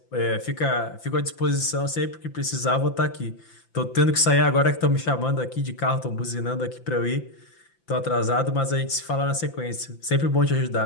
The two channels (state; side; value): late; right; 5.9 ms